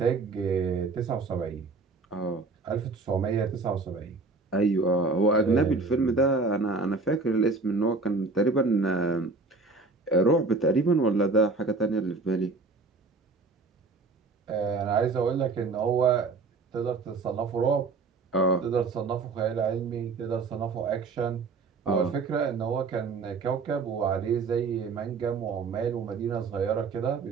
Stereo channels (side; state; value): left; quieter; 4.0 dB